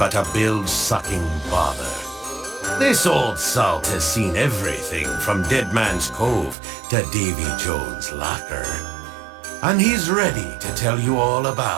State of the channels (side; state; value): left; drops out; at 6.6 s